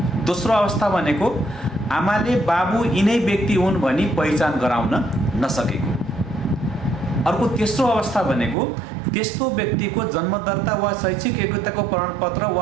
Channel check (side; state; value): left; drops out; at 8.6 s